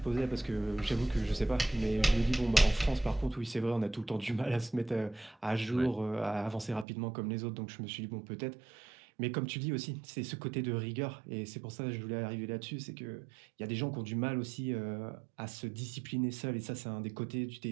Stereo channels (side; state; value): left; drops out; at 6.9 s